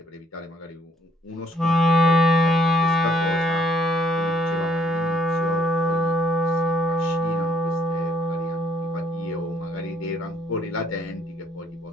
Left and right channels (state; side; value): normal; both; correlation 0.66